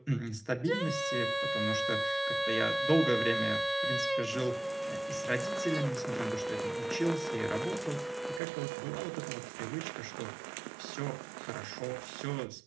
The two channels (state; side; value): drops out; left; at 8.4 s